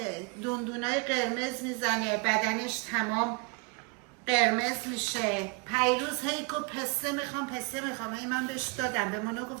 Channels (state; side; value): quieter; left; 31.5 dB